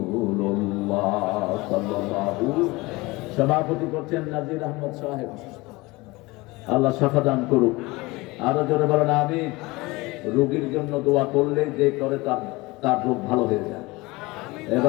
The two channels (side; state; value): right; quieter; 22.4 dB